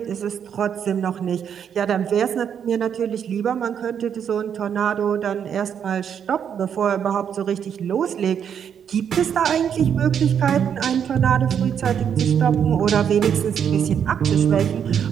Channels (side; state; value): left; quieter; 8.2 dB